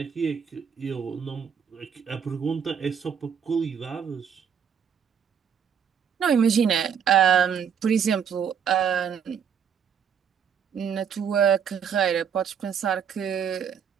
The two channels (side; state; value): left; quieter; 7.6 dB